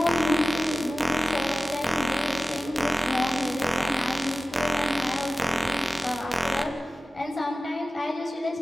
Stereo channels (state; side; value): normal; both; correlation 0.95